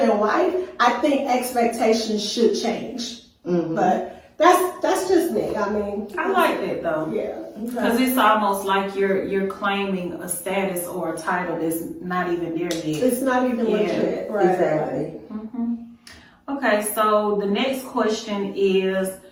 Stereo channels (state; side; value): identical; both; correlation 1.00